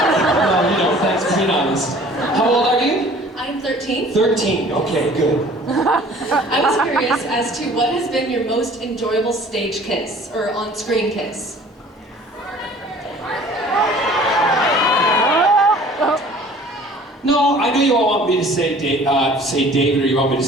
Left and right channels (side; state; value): both; normal; correlation 0.50